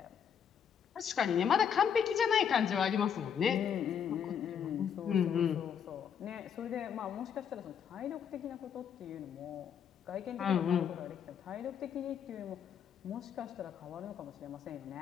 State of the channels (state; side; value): quieter; right; 7.9 dB